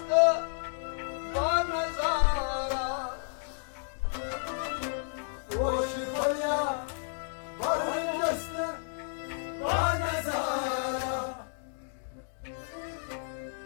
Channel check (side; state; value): right; silent; digital silence